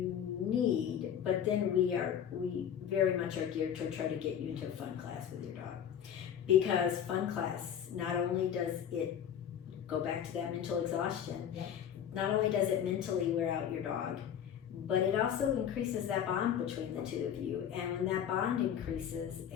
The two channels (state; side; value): quieter; right; 9.1 dB